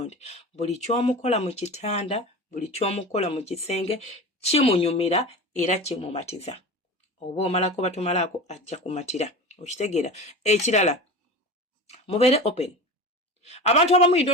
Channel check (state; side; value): normal; both; correlation 0.31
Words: buli kyomukola mu kitanda, buli kyomukola mu kisenge kimunyumira era kimumatiza. Oba omalako batumalaako ajja kumatira. Okitegeera. Ekirala mubeere open. Abantu abamu you